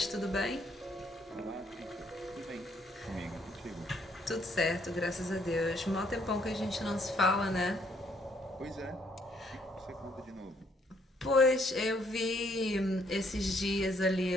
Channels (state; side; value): normal; both; correlation 0.68